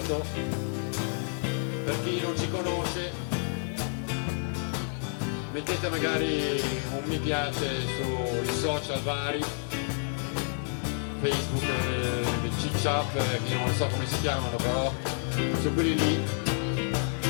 Per chi non ci conosce, mettete magari un mi piace sui social vari, Facebook, CiCiap, che non so come si chiamano, però su quelli lì.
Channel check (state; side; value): silent; right; 58 dB below the other